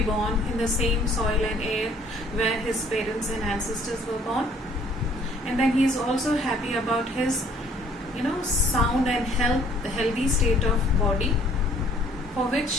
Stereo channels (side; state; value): both; normal; correlation 0.58